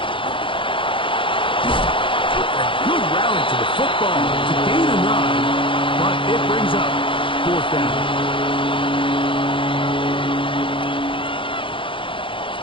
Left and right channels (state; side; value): late; right; 0.25 ms